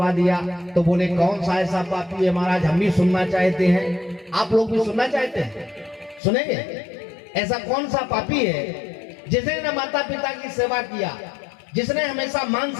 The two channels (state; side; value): drops out; right; at 6.2 s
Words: दिया। तो बोले कौन सा ऐसा पापी है महाराज? हम भी सुनना चाहते हैं, आप लोग भी सुनना चाहते हैं, सुनेंगे? ऐसा कौन सा पापी है जिसने न माता पिता की सेवा किया, जिसने हमेशा